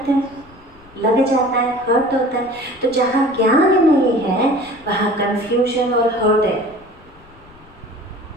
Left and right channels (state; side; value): noise; left; rumble, 26 dB below the sound